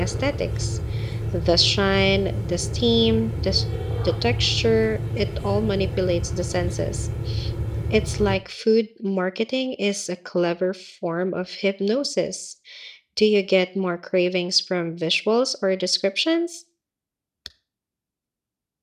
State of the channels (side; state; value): both; identical; correlation 1.00